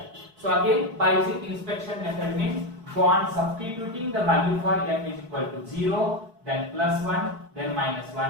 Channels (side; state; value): left; late; 4.7 ms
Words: So again, by using inspection method means go on substituting the value for m is equal to 0, then plus 1, then minus